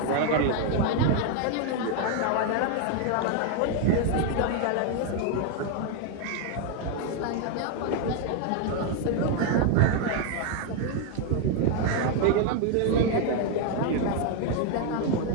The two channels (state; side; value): different; both; correlation 0.01